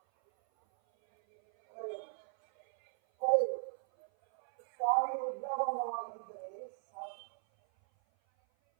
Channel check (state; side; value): silent; left; 53 dB below the other